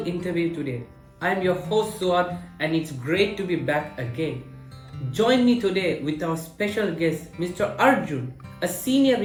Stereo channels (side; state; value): both; identical; correlation 1.00